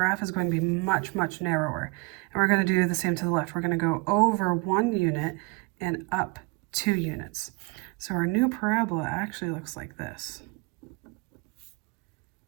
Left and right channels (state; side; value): quieter; left; 28.3 dB